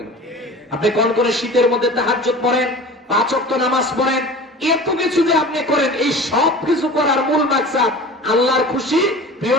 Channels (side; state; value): both; normal; correlation 0.38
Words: আপনি কোন কোন শীতের মধ্যে তাহাজ্জুদ পড়েন, 5 ওয়াক্ত নামাজ পড়েন, এত কিছু যে আপনি করেন, এই সব কিছু করার মূল মাকসাদ আল্লাহর খুশি, প্রিয়